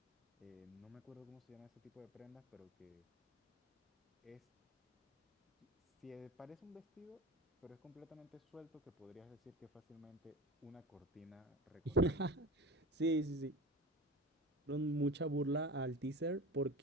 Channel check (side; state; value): both; normal; correlation 0.31